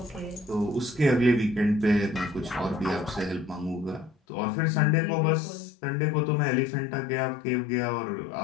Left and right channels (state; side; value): drops out; right; at 4.2 s